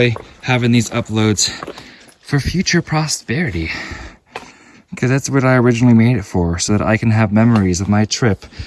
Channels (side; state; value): both; identical; correlation 1.00